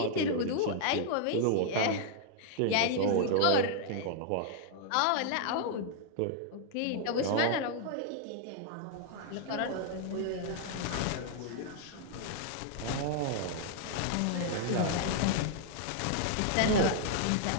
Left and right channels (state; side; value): different; both; correlation -0.01